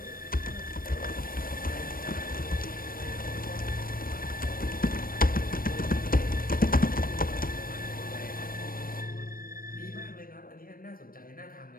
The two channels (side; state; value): right; late; 0.41 ms